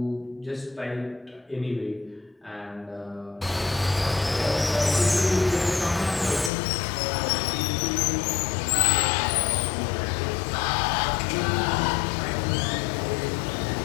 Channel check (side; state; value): right; drops out; at 6.5 s